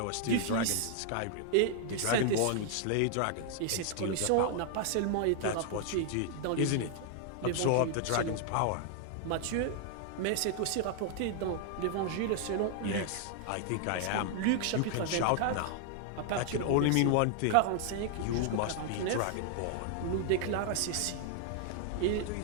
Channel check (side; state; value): both; different; correlation 0.00